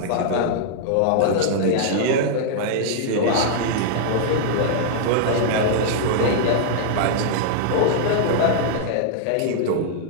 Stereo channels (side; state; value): both; different; correlation -0.01